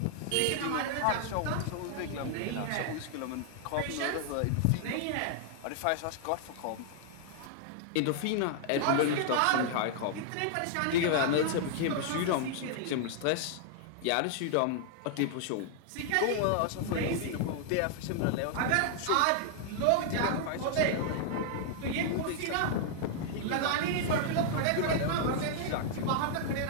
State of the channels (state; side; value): different; both; correlation 0.00